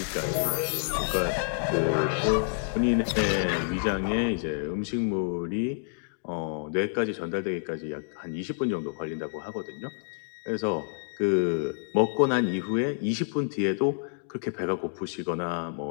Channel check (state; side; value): silent; right; digital silence